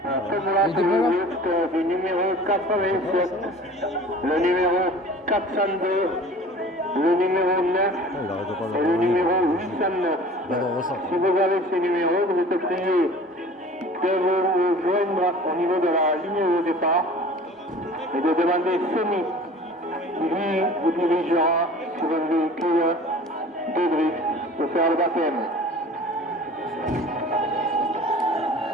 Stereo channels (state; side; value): normal; both; correlation 0.44